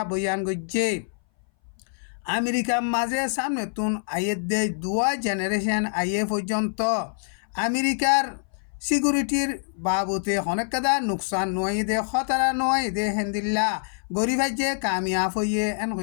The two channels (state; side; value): silent; right; 59 dB below the other